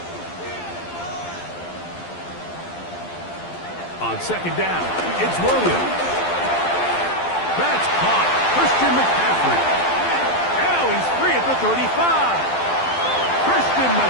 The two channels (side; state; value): right; late; 12 ms